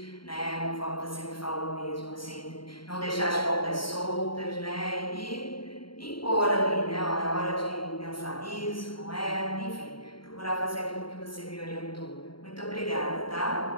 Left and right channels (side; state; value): right; late; 0.73 ms